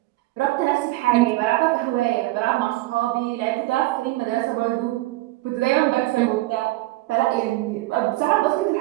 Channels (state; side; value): quieter; left; 19.1 dB